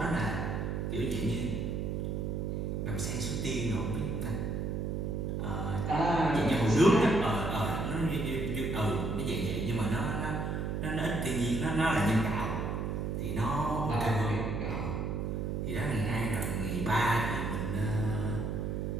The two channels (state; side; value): noise; right; hum, 1 dB below the sound